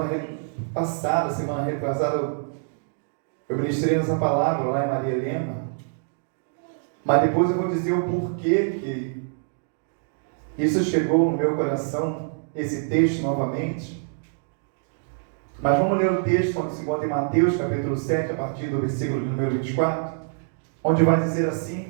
retrasada, eu ministrei essa palavra lá em Maria Helena. Mas depois eu vou dizer o porquê que isso chegou no meu coração, esse texto novamente. Mas vamos ler o texto onde se encontra em Mateus, capítulo 7, a partir do versículo de número 24, onde vai dizer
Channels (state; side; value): silent; left; digital silence